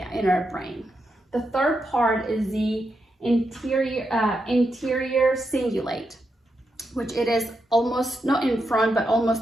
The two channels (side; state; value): both; normal; correlation 0.84